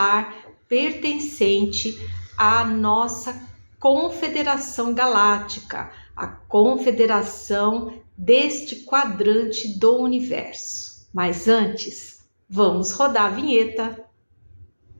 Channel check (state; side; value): inverted; both; correlation -1.00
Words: pertencente à nossa Confederação Galáctica, a confederação deste quadrante do universo. Mas antes, vamos rodar a vinheta.